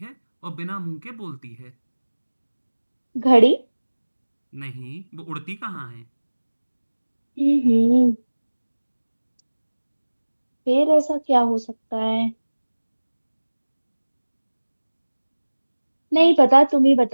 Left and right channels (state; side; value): inverted; both; correlation -1.00